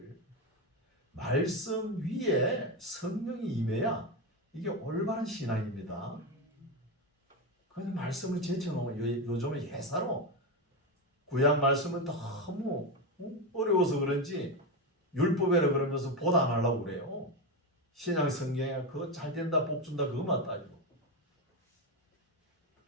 말씀 위에 성령이 임해야 이게 올바른 신앙입니다. 그냥 말씀을 제쳐놓으면 요즘은 예사로 구약 말씀은 너무 어려워서 그런지 율법이라 그러면서 보도 안 하려고 그래요. 신약 성경에 그거 잘 된다 복 준다 그것만 따지고.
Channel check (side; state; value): both; normal; correlation 0.13